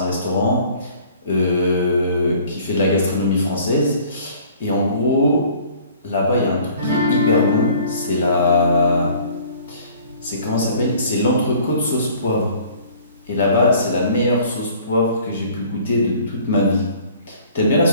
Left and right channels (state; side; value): inverted; both; correlation -0.53